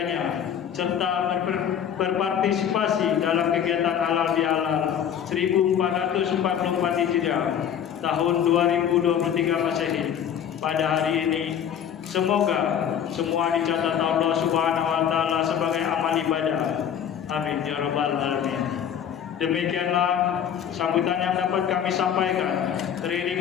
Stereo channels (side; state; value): right; quieter; 8.8 dB